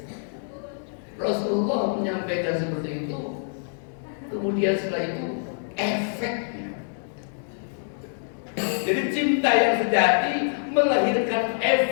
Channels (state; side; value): silent; right; digital silence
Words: Rasulullah menyampaikan seperti itu. Kemudian setelah itu efeknya. Jadi cinta yang sejati melahirkan